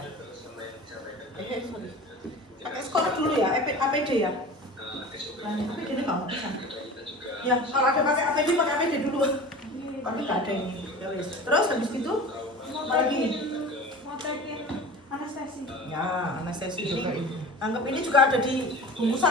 Sorry. Pakai sekolah dulu ya, APD ya. Nah, APD ini nggak bisa. Ya, kalau ada pakai APD dulu. Tapi nggak ada ini. Ya, terus habis itu apa lagi? Anestesi. Ya, anestesi ini. Anggap ini juga ada di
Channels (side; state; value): both; normal; correlation 0.37